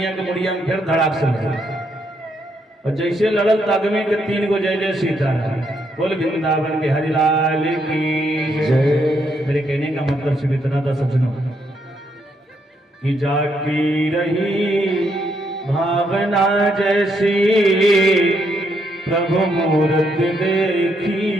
के मुड़िया में फिर धड़ाक से लगी। और जैसे लड़ल तागमे के 3 गो जय जय सीता। बोल वृंदावन के हरिलाल की जय। मेरे कहने का मतलब सिर्फ इतना था सज्जनों, कि जाकी रही भावना जैसी, प्रभु मूर्त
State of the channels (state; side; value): normal; both; correlation 0.76